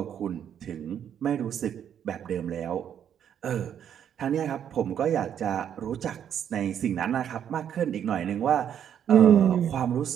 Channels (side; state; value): left; quieter; 9.2 dB